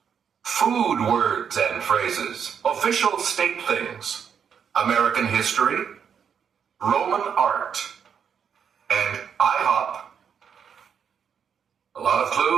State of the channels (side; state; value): left; quieter; 7.4 dB